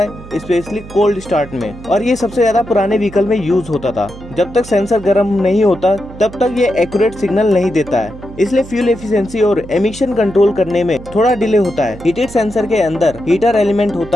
स्पेशली कोल्ड स्टार्ट में। और ये सबसे ज़्यादा पुराने व्हीकल में यूज होता था। जब तक सेंसर गर्म नहीं होता तब तक ये एक्यूरेट सिग्नल नहीं देता है, इसलिए फ्यूल एफिशिएंसी और एमिशन कंट्रोल करने में थोड़ा डिले होता है। हीटेड सेंसर के अंदर हीटर एलिमेंट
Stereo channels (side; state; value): right; noise; hum, 16 dB below the sound